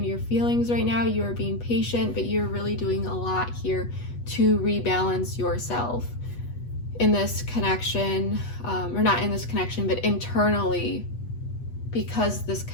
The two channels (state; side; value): late; right; 8.2 ms